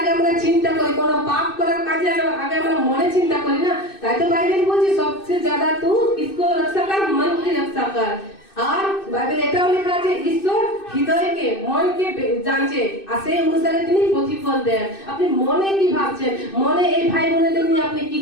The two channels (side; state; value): right; late; 2.6 ms